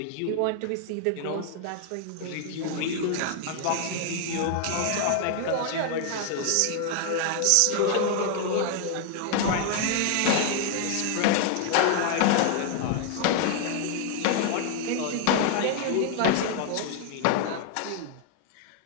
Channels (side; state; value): both; different; correlation 0.00